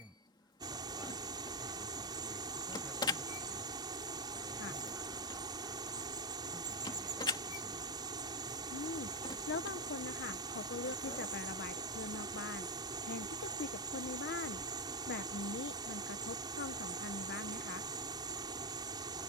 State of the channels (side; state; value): both; normal; correlation 0.02